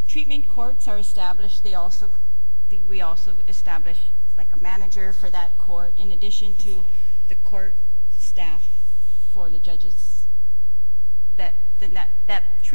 treatment courts are established, we also establish like a manager for that court in addition to the court staff for the judges? That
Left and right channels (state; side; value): inverted; both; correlation -1.00